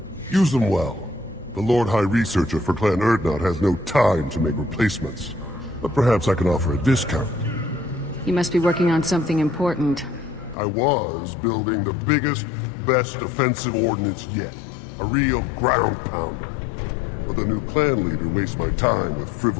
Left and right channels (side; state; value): right; drops out; at 10.6 s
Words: Use them well. The Lord High Researcher for Clan Urdnot has no time to make replacements. But perhaps I can offer a discount. You must be working on something important. I was building the biggest, best offensive ordnance yet. A real ground pounder. But the new clan leader wastes my time with